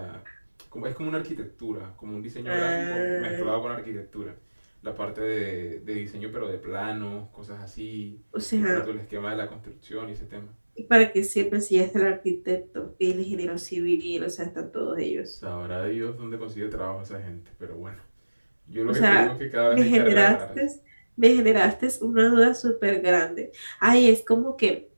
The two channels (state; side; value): inverted; both; correlation -1.00